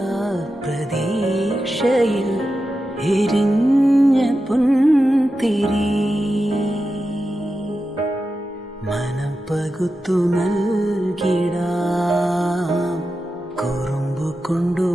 പ്രതീക്ഷയിൽ എരിഞ്ഞ പുൻതിരി മനം പകുത്തു നൽകിടാം കുറുമ്പു കൊണ്ടു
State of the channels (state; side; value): normal; both; correlation 0.91